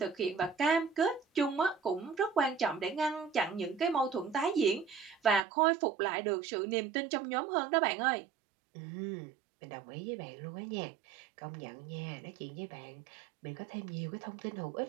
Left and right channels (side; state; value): left; drops out; at 5.4 s